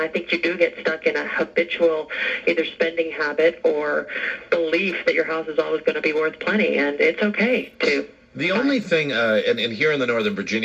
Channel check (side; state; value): both; identical; correlation 1.00